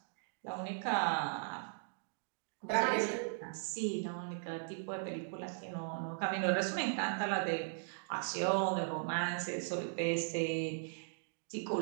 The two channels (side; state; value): left; silent; digital silence